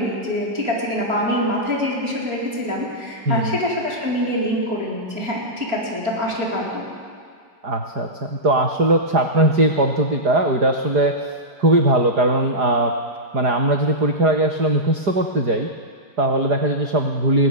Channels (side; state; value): left; late; 4.4 ms